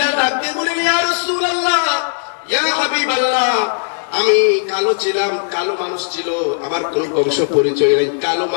ডাক দিয়ে বলেন, ইয়া রাসূলুল্লাহ, ইয়া হাবিবাল্লাহ, আমি কালো ছিলাম, কালো মানুষ ছিল, আমার কোন বংশ পরিচয় নেই, কালো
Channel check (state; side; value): silent; right; 68 dB below the other